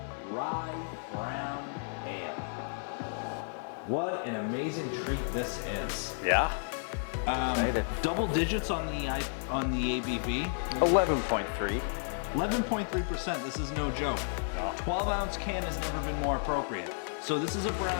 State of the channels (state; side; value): silent; right; 56 dB below the other